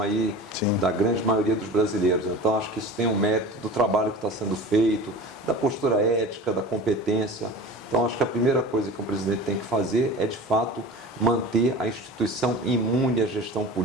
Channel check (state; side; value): normal; both; correlation 0.36